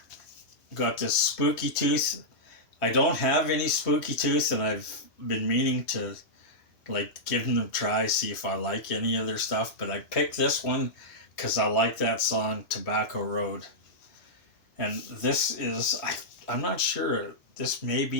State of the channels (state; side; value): late; right; 3.0 ms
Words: Got this Spooky Tooth. I don't have any Spooky Tooth, and I've been meaning to give them a try, see if I like any of their stuff. But I picked this one because I like that song, Tobacco Road. And this is, I'm not sure, this may